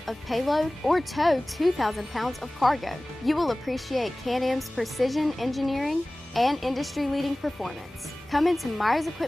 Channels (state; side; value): normal; both; correlation 0.98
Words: of payload or tow 2,000 pounds of cargo. You will appreciate Can-Am's precision engineering and industry-leading performance. Come into Myers